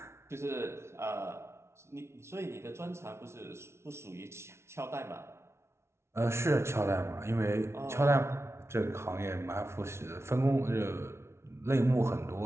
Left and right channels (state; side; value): late; left; 0.13 ms